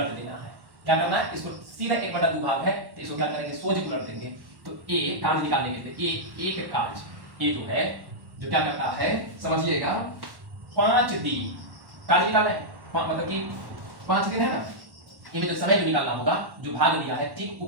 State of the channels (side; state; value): left; late; 1.1 ms